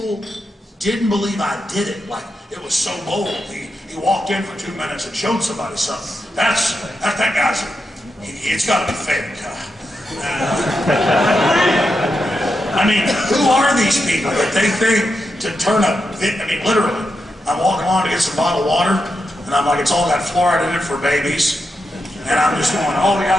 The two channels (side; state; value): both; normal; correlation 0.86